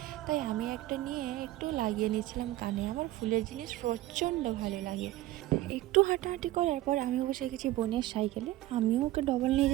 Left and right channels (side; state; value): left; quieter; 16.1 dB